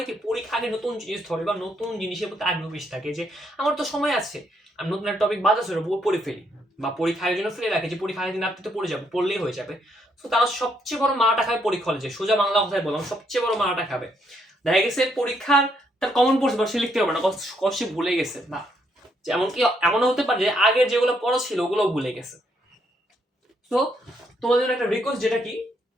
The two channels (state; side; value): normal; both; correlation 0.74